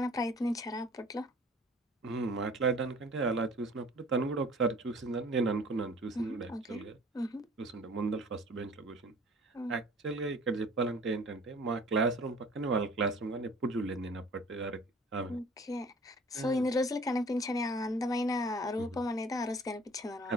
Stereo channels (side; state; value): both; normal; correlation 0.50